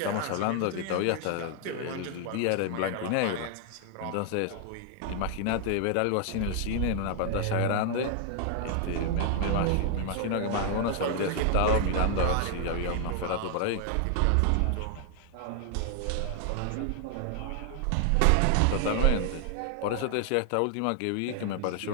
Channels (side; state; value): both; different; correlation 0.00